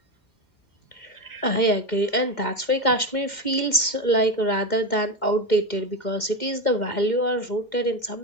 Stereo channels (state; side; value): late; right; 2.1 ms